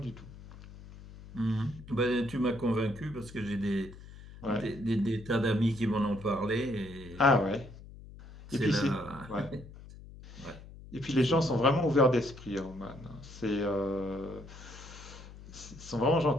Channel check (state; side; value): noise; left; hum, 17 dB below the sound